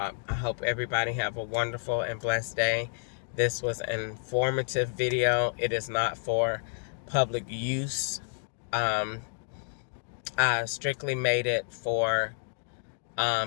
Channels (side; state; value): right; silent; digital silence